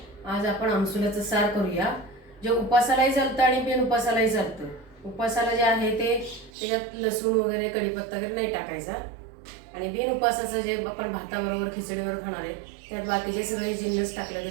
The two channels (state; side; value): drops out; left; at 6.5 s